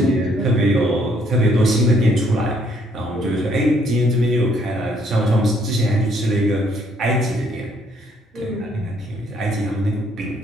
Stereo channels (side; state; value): both; normal; correlation 0.67